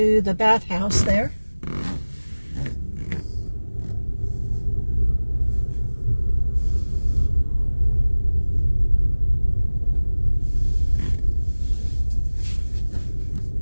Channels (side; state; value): both; inverted; correlation -1.00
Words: the bathhouse there.